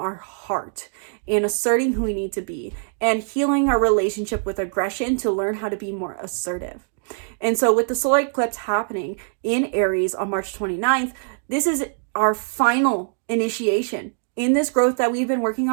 heart and asserting who we need to be, and healing our relationship with aggression to learn how to be more assertive. And so with the solar eclipse happening in Aries on March 29th, this is our final initiation in this growth that we've been working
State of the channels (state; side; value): silent; left; digital silence